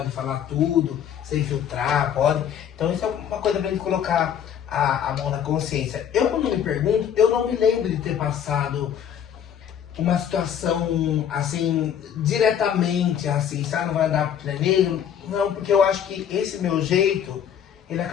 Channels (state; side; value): quieter; right; 9.0 dB